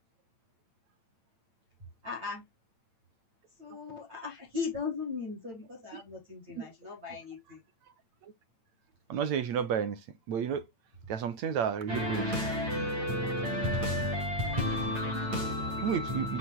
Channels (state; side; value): late; left; 8.9 ms